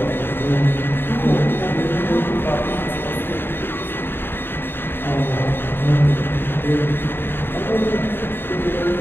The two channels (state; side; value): late; right; 0.10 ms